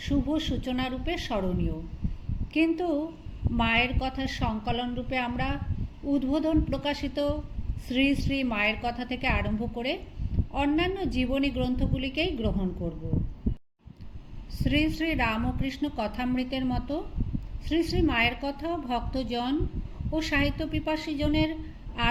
শুভ সূচনা রূপে স্মরণীয়। কিন্তু মায়ের কথার সংকলন রূপে আমরা উদ্বোধন প্রকাশিত শ্রী শ্রী মায়ের কথা থেকে আরম্ভ করে অন্যান্য জীবনী গ্রন্থগুলিকেই গ্রহণ করব। শ্রী শ্রী রামকৃষ্ণ কথামৃতের মতো শ্রী শ্রী মায়ের কথা ভক্তজন ও সাহিত্য পিপাসীজনের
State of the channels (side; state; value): both; identical; correlation 1.00